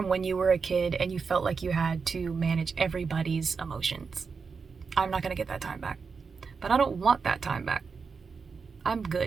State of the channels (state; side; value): quieter; left; 5.2 dB